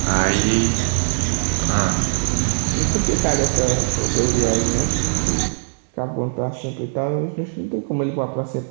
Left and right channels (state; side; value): silent; left; digital silence